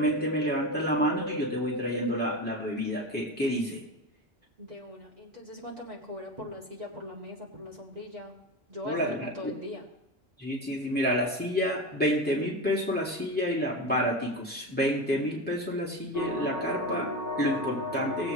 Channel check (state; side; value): normal; both; correlation 0.22